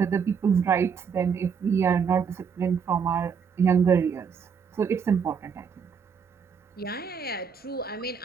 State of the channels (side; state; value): left; quieter; 6.5 dB